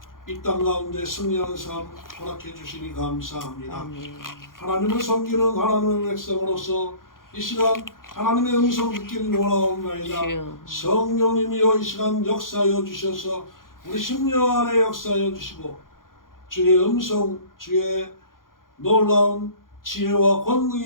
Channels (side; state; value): right; late; 0.90 ms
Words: 이 땅 가운데 승리하는 삶 허락해 주시니 감사합니다. 아멘. 하나님을 섬기는 하나님의 백성으로서 이 시간 하나님의 음성 듣기를 원하옵나이다. 주여. 성령님이여 이 시간 역사하여 주셔서 우리 심령 안에 역사하여 주시고 주의 음성, 주의 놀라운 지혜와